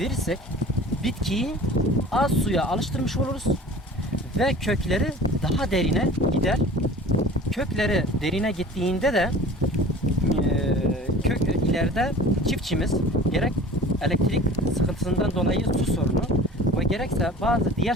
bitkiyi az suya alıştırmış oluruz ve kökleri daha derine gider. Kökleri derine gittiğinde de ileride çiftçimiz gerek elektrik sıkıntısından dolayı su sorunu ve gerekse bazı diğer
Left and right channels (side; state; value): both; normal; correlation 0.43